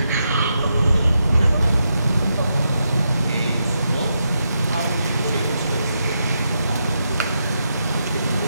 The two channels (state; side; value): inverted; both; correlation -0.83